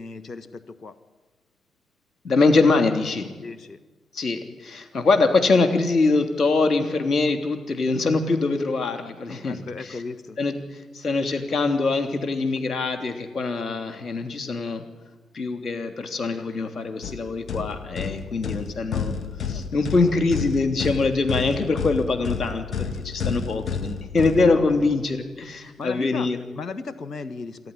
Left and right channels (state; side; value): quieter; right; 3.2 dB